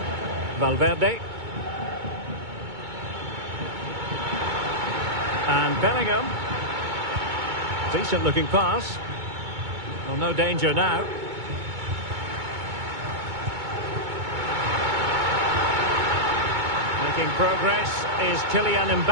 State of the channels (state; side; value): late; left; 2.2 ms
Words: Valverde. And Bellingham. Decent looking pass. Well, no danger now. Making progress is Kylian